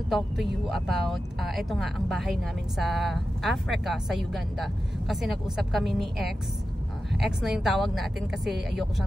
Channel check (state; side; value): normal; both; correlation 0.92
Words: talk to you about ito nga ang bahay namin sa Africa, sa Uganda. Kasi nag-usap kami ni X na yung tawag natin kasi ayoko